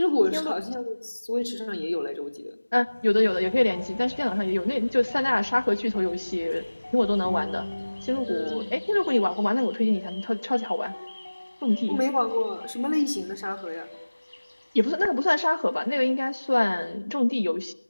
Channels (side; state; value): both; inverted; correlation -1.00